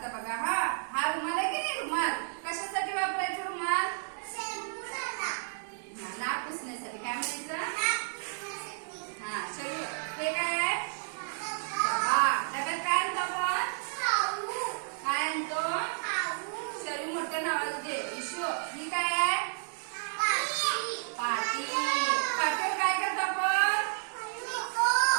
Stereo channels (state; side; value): silent; left; digital silence